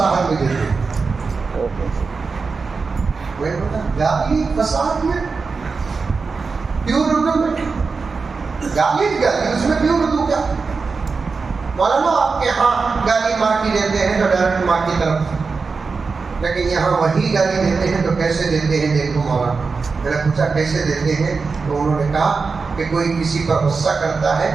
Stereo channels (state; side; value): quieter; left; 4.6 dB